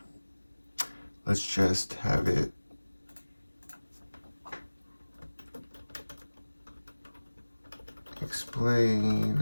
let's just have it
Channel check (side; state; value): both; inverted; correlation -1.00